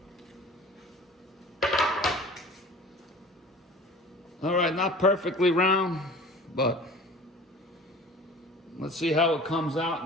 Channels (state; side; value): normal; both; correlation 0.43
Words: All right, not perfectly round, but let's see how it comes out